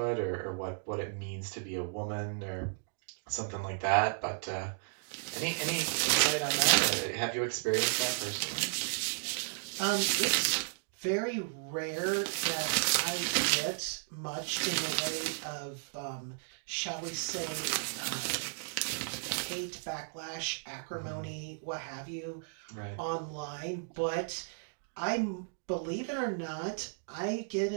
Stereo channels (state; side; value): silent; left; digital silence